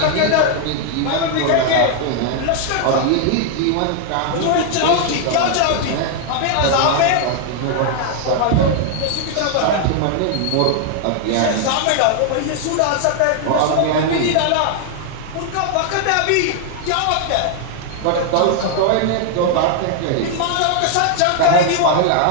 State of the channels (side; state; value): both; different; correlation 0.00